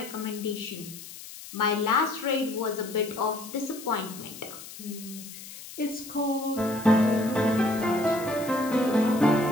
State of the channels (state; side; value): noise; left; hiss, 14 dB below the sound